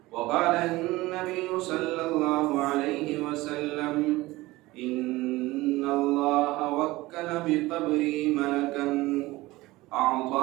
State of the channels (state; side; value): quieter; left; 19.5 dB